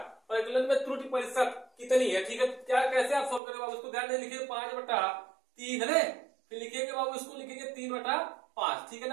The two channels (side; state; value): left; drops out; at 3.4 s